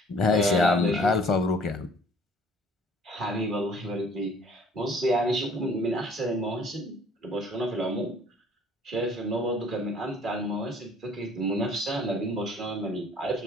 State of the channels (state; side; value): normal; both; correlation 0.55